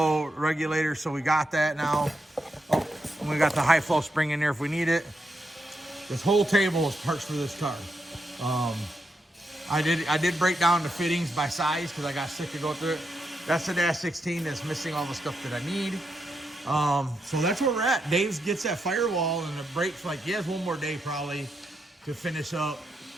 regulator, so we got that now. Oh, and we got the high flow spring in there if we need it. This whole table is parts for this car. I did break down the fittings by size because I got sick of going through it. That's the Dash 16 that's missing all the stuff that I need. So that's where we're at. Dave gets that Firewall and the brakes, like he has one more day probably to finish up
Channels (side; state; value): both; normal; correlation 0.83